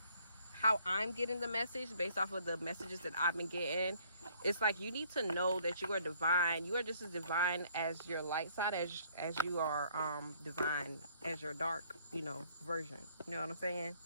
how I'm getting the message based off of the messages that I've been getting. It's like you need to know that you are divine. You are just as divine as your light side as you are divine as your dark, version. You know what I'm saying?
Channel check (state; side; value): inverted; both; correlation -0.62